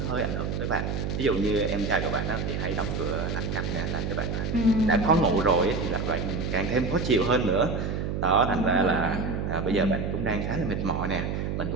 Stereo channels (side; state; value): right; noise; hum, 2 dB below the sound